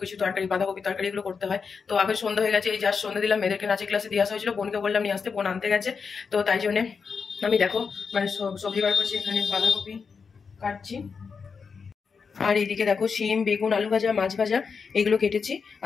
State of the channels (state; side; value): quieter; right; 5.6 dB